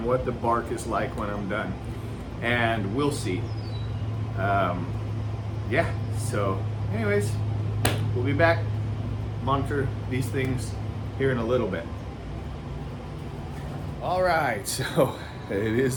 what the bark is like when I'm done. And we'll see. Yeah, so anyways, we'll be back, monitor these things here in a little bit. All right, so it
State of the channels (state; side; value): identical; both; correlation 1.00